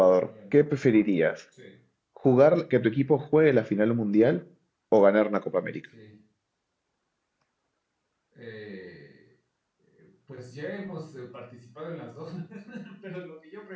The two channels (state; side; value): identical; both; correlation 1.00